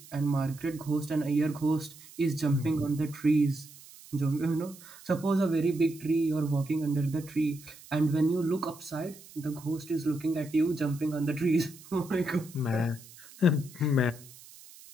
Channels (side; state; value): right; noise; hiss, 20 dB below the sound